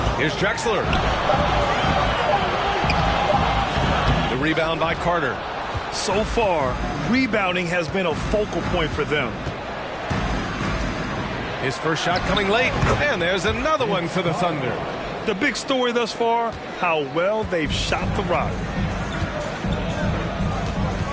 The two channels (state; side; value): identical; both; correlation 1.00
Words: Here's Drexler. The rebound by Carter. So far, rebounding has been a focal point for them. His first shot coming late, and there's another one for the Thunder. The big story thus far, how well they've shot the rock.